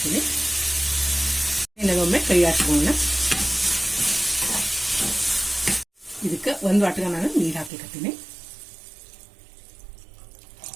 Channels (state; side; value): drops out; left; at 7.7 s